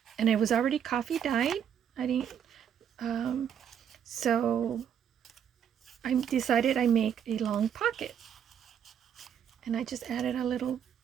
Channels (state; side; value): quieter; left; 8.6 dB